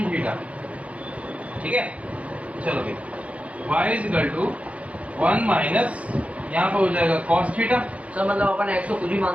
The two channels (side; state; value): left; late; 0.065 ms